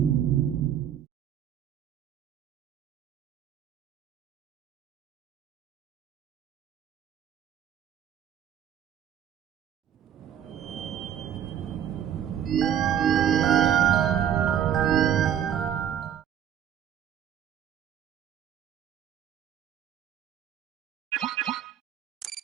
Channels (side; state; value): left; quieter; 9.7 dB